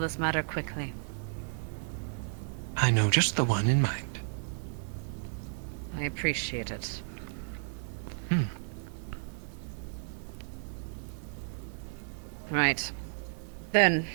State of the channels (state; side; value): silent; left; digital silence